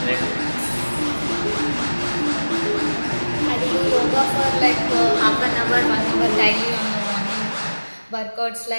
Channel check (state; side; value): inverted; both; correlation -1.00